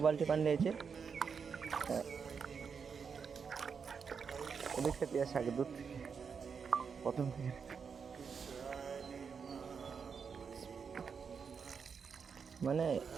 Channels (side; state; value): left; quieter; 6.1 dB